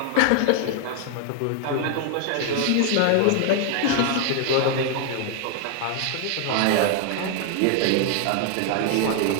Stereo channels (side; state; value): both; different; correlation 0.00